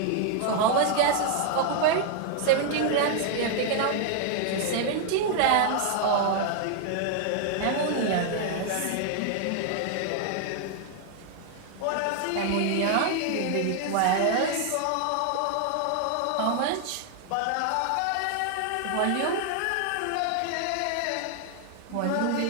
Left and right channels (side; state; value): both; different; correlation 0.00